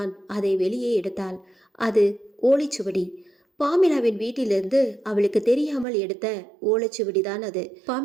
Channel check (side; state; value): left; drops out; at 5.9 s